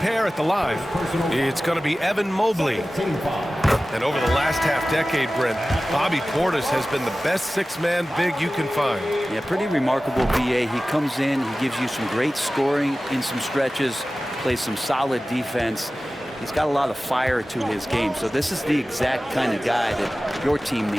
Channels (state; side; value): normal; both; correlation 0.96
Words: at the line. It's going to be Evan Mobley. And over the last half-decade, Brent, Bobby Portis has been the best six-man big you can find. Yeah, pretty remarkable, BA. He comes in, he gives you some great scoring in some stretches, plays some solid defense. He's got a lot of fire to his game. So this is the exact kind of guy that your team